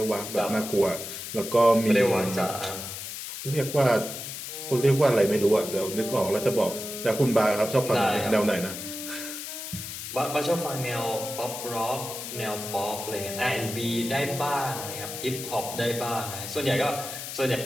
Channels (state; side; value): noise; left; hiss, 8 dB below the sound